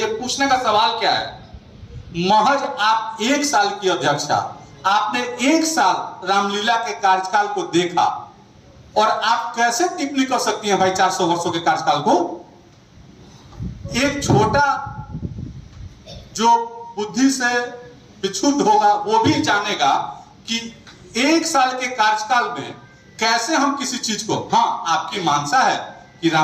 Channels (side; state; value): both; identical; correlation 1.00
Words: पूछने का सवाल क्या है महज आप 1 साल की अध्यक्षा आपने 1 साल रामलीला के कार्यकाल को देखा और आप कैसे टिप्पणी कर सकती हैं भाई 400 वर्षों के कार्यकाल को। एक छोटा जो बुद्धि से विक्षुब्ध होगा वो भी जानेगा कि 1 साल के कार्यकाल में कैसे हम किसी चीज को हाँ आपकी मानसा है कि